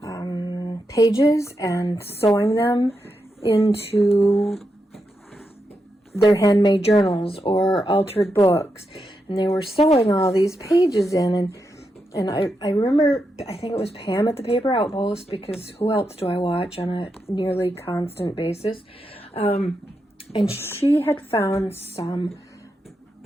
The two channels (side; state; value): both; normal; correlation 0.85